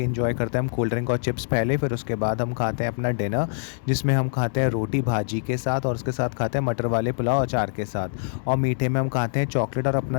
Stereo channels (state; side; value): silent; right; 62 dB below the other